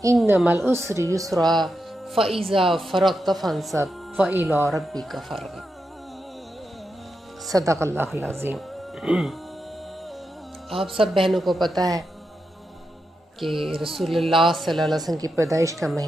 انما العسر یسرا فإذا فرغت فانصب وإلی ربک فارغب. صدق اللہ العظیم. آپ سب بہنوں کو پتہ ہے کہ رسول اللہ صلی اللہ علیہ وسلم کی پیدائش کا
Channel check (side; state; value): both; normal; correlation 0.87